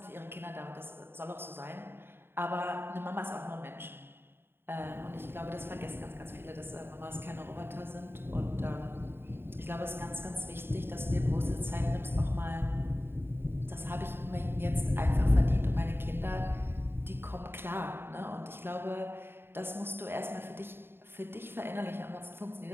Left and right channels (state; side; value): late; left; 0.11 ms